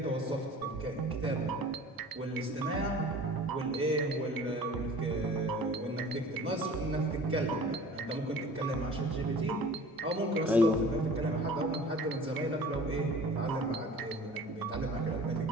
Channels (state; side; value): normal; both; correlation 0.44